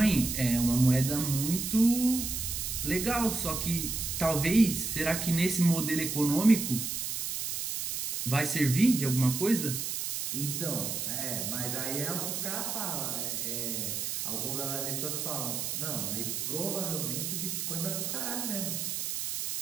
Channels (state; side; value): noise; right; hiss, 3 dB below the sound